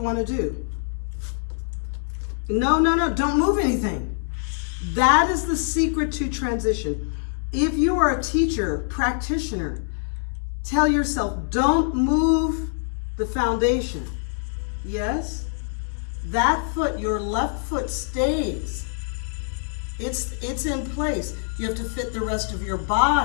want to do. No, don't move anything. That is the secret to transition. If you are a teacher, practitioner, tell yourself, don't move the foundation. Yes? That foot, your left foot stays. It's in place. You have to fit the rest of your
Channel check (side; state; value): right; silent; digital silence